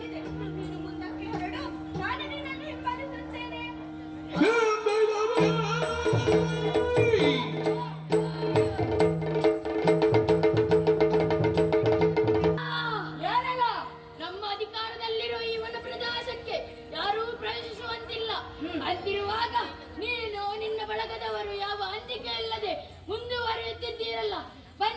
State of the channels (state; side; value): identical; both; correlation 1.00